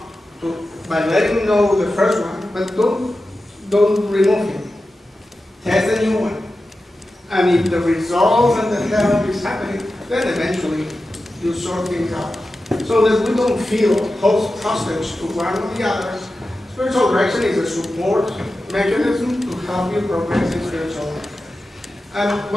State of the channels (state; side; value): normal; both; correlation 0.93